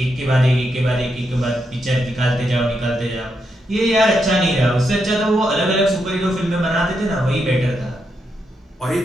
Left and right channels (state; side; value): normal; both; correlation 0.82